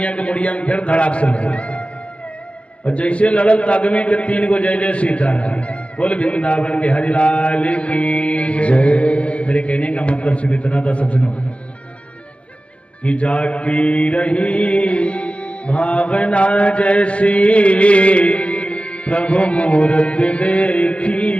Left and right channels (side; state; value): right; late; 0.061 ms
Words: के मुड़िया में फिर धड़ाक से लगी। और जैसे लड़ल तागमे के 3 गो जय जय सीता। बोल वृंदावन के हरिलाल की जय। मेरे कहने का मतलब सिर्फ इतना था सज्जनों, कि जाकी रही भावना जैसी, प्रभु मूर्त